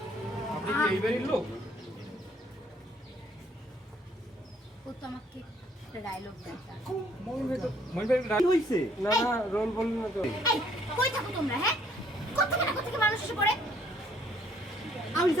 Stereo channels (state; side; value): normal; both; correlation 0.64